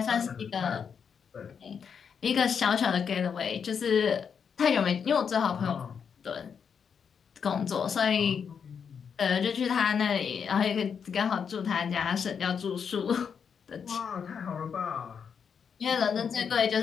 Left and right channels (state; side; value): quieter; right; 6.8 dB